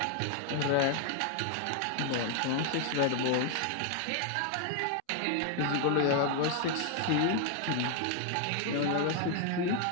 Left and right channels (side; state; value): both; different; correlation 0.00